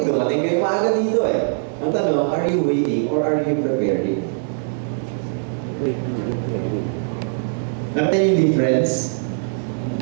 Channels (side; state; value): left; silent; digital silence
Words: kayo maaga dito Ang tanong, are you waiting or are you preparing? Waiting and preparing. Nakita niyo yung difference?